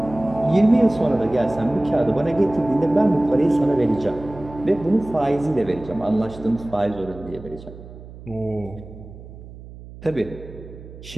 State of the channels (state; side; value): noise; right; hum, 16 dB below the sound